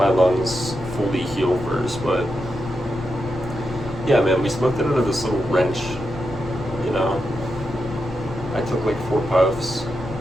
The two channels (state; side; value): noise; left; rumble, 12 dB below the sound